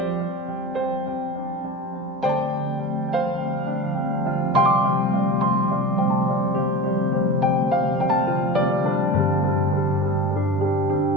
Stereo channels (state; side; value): normal; both; correlation 0.30